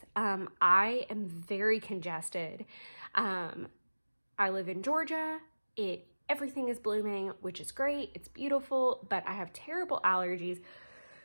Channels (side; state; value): both; inverted; correlation -1.00